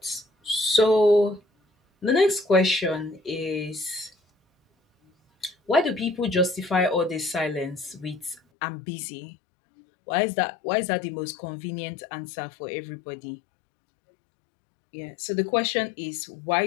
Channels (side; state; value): right; drops out; at 8.4 s